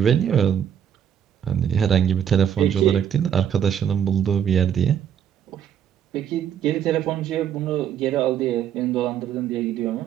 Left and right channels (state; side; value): quieter; left; 9.0 dB